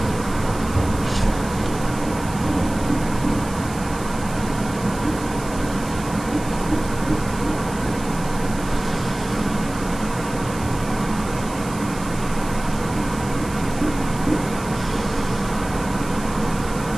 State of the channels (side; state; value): right; noise; hiss, 15 dB below the sound